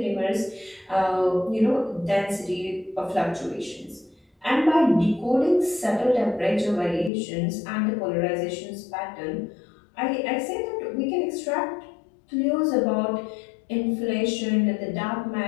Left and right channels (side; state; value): right; drops out; at 7.1 s